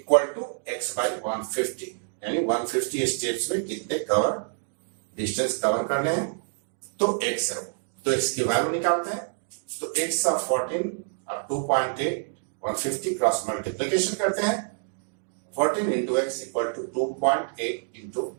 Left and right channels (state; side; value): silent; left; digital silence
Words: टू x/150, यानी 150 स्टेप्स में कितने कवर डिस्टेंस कवर करने हैं तो x है। तो x की वैल्यू निकालते हैं। तो x ऑफ 14 और 2.8 150 क्रॉस मल्टीप्लीकेशन करते हैं। 14 into x equal to 2.8 into